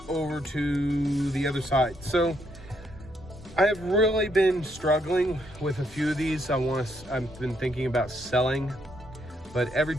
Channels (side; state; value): both; normal; correlation 0.74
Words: over to the other side. So I have really been struggling with a few of these. I've been thinking about selling, but every